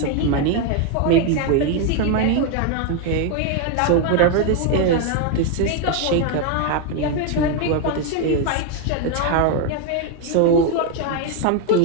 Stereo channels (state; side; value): different; both; correlation 0.01